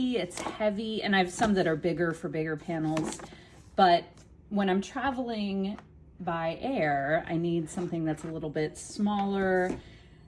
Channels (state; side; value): identical; both; correlation 1.00